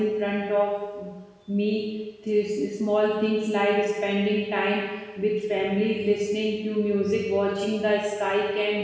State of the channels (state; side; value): identical; both; correlation 1.00